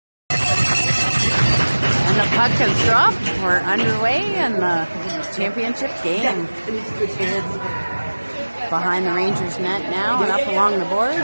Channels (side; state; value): both; inverted; correlation -1.00